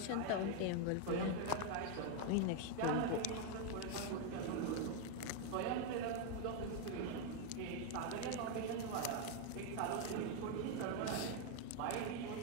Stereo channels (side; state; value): both; different; correlation 0.01